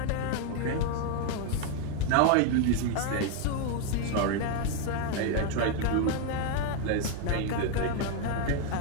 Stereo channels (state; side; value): different; both; correlation 0.01